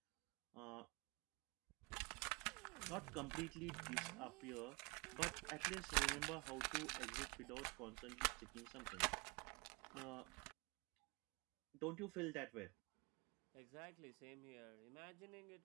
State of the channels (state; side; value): quieter; left; 28.9 dB